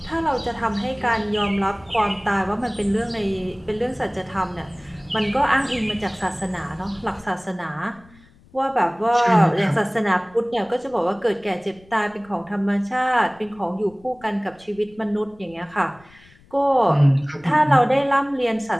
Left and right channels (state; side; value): noise; left; rumble, 27 dB below the sound